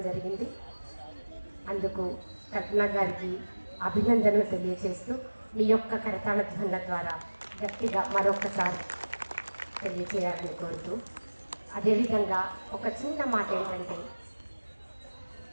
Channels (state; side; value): inverted; both; correlation -1.00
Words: జరిగింది. అందుకు కల్పన గారికి అభినందనలు తెలియజేస్తూ మీ యొక్క కరతాళ ధ్వనుల ద్వారా గట్టిగా మరొకసారి తెలియజేయాలని కోరుతూ, అదేవిధంగా ఒక చిన్న మాట ఏంటంటే,